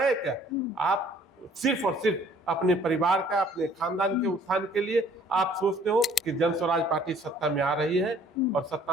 क्या? आप सिर्फ और सिर्फ अपने परिवार का, अपने खानदान के उत्थान के लिए आप सोचते हो कि जन स्वराज पार्टी सत्ता में आ रही है और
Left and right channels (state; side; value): normal; both; correlation 0.56